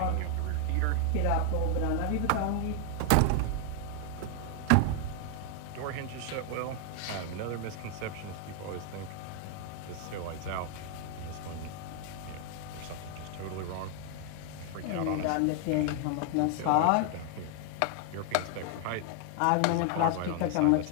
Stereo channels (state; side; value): different; both; correlation 0.00